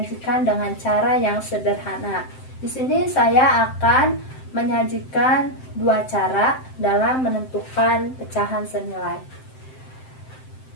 dengan cara yang sederhana. Di sini saya akan menyajikan dua cara dalam menentukan pecahan senilai.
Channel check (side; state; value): right; late; 7.7 ms